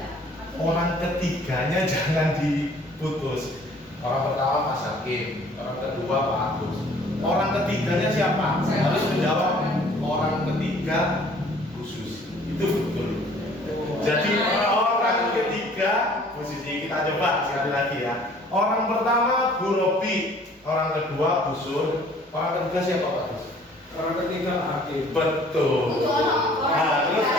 Orang ketiganya jangan diputus. Orang pertama Mas Hakim, orang kedua Pak Agus. Orang ketiganya siapa? Harus menjawab. Orang ketiga khusus. Itu betul. Jadi orang ketiga posisi kita coba sekali lagi ya. Orang pertama Bu Robi, orang kedua Bu Sun, orang ketiga siapa Pak Gus? Orang ketiga Hakim. Betul. Harus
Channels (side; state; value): both; normal; correlation 0.55